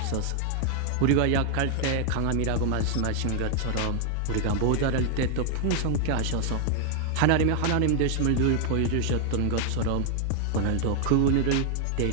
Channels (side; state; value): both; different; correlation 0.00